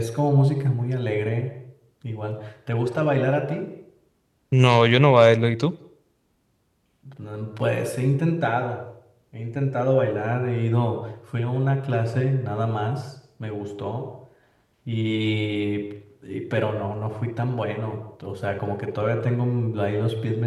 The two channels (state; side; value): identical; both; correlation 1.00